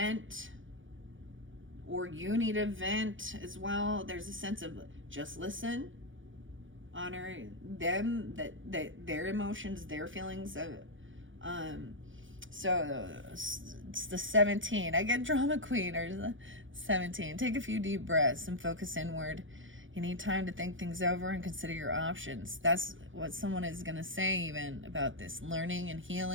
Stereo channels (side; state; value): left; late; 0.56 ms